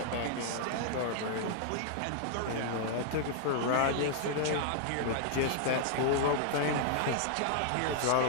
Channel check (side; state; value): both; different; correlation -0.01